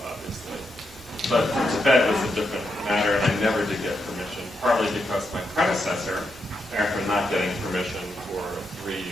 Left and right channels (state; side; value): normal; both; correlation 0.82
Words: obviously. But for Tibet, it was a different matter, and I never did get permission, partly because my predecessor, after not getting permission for 3